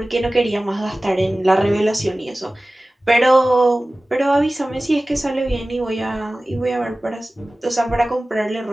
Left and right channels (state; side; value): normal; both; correlation 0.97